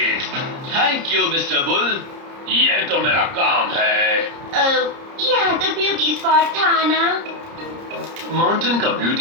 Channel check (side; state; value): left; late; 30 ms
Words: Thank you mister bull. ये तो मेरा काम है। यहाँ तो ब्यूटी स्पॉट था ना। माउंटेन का